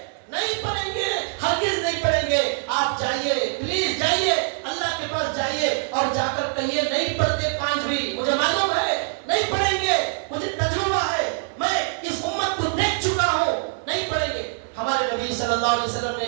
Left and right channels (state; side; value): silent; left; digital silence